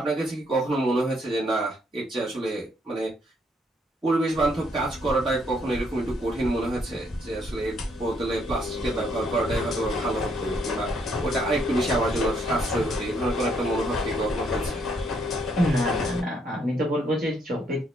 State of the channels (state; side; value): normal; both; correlation 0.71